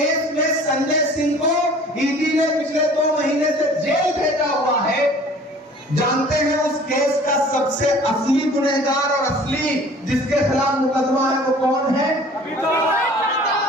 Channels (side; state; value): both; normal; correlation 0.49